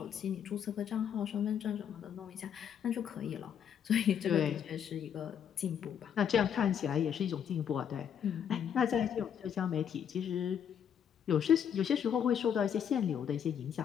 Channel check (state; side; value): quieter; right; 8.5 dB